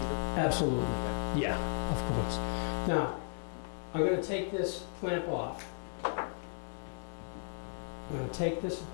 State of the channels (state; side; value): silent; right; digital silence